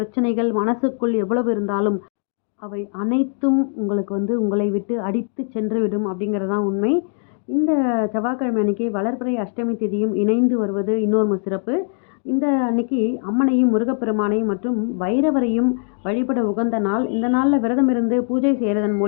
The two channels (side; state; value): right; silent; 56 dB below the other